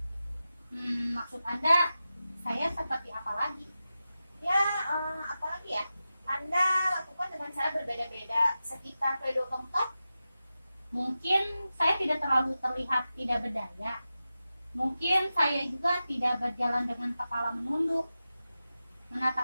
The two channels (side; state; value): both; inverted; correlation -0.93